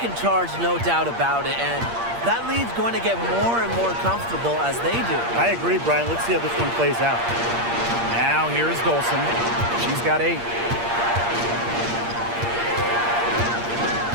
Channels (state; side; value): late; left; 8.6 ms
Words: charge, no doubt about it, and that lead's going to get more and more comfortable as they do. I agree, Brian. Let's see how this one plays out. Now here's Dolson. She's got 8.